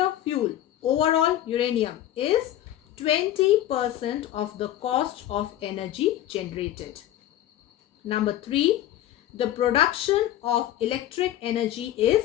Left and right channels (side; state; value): right; quieter; 12.8 dB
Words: fuel, overall uranium, is 20% of the cost of energy generated. Number 3. The production of electric energy